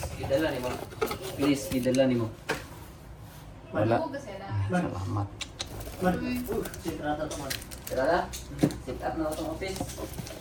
idala ni mo. Please, idala ni mo. Wala. Salamat. Tara na. Sit up na itong office.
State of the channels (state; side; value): identical; both; correlation 1.00